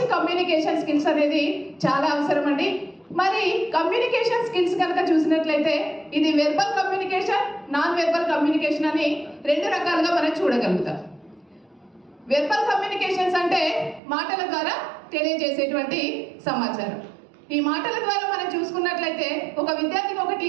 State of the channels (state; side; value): drops out; left; at 14.0 s